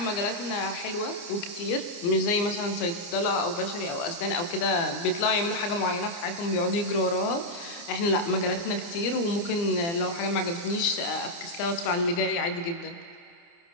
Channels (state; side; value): late; right; 29 ms